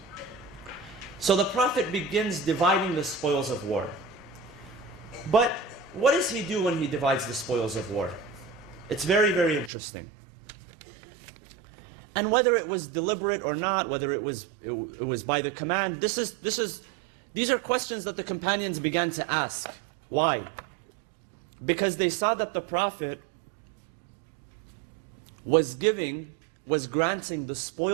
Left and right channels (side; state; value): left; drops out; at 9.7 s